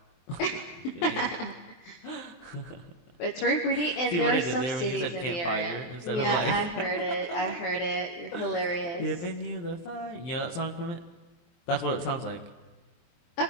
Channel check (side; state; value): right; late; 23 ms